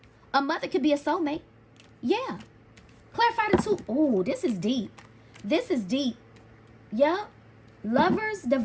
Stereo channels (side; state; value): both; identical; correlation 1.00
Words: A mother can be a soulmate. Yeah. Clarify the two. Oh, this is deep. This is deep. Yeah. Lovers,